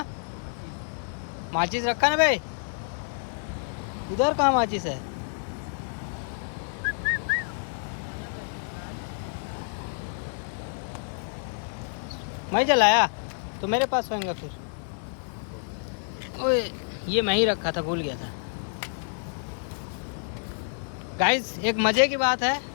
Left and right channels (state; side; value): silent; right; digital silence